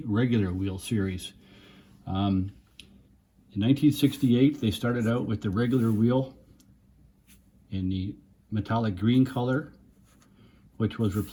regular wheel series. In 1968 they started out with the regular wheel in the metallic green color, which was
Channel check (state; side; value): identical; both; correlation 1.00